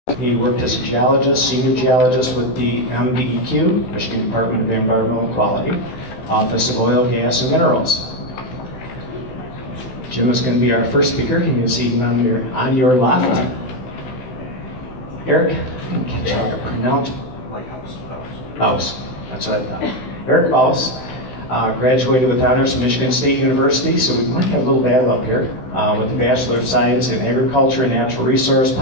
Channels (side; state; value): right; late; 16 ms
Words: he worked as a geologist, senior geologist with the MDEQ, Michigan Department of Environmental Quality, Office of Oil, Gas, and Minerals. Jim is going to be our first speaker. You can see him on your left. Eric, I didn't catch how to pronounce. Baus. That's what I thought. Eric Baus graduated with honors from Michigan State University, so we might have a little battle up here, with a Bachelor of Science in Agriculture and Natural Resource